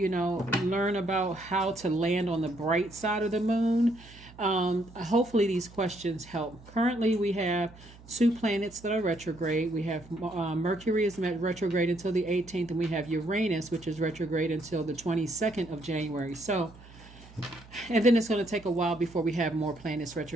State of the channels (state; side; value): noise; right; hum, 21 dB below the sound